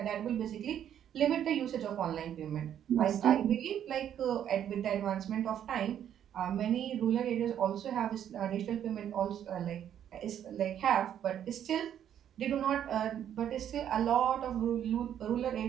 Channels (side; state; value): left; quieter; 9.9 dB